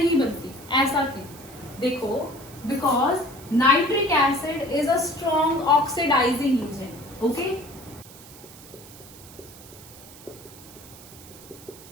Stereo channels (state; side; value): noise; right; hiss, 19 dB below the sound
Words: बनती, ऐसा क्यों? देखो, because nitric acid is a strong oxidising agent. Okay,